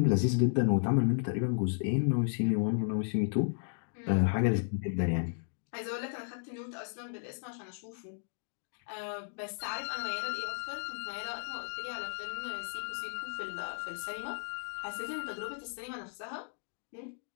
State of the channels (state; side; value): silent; right; digital silence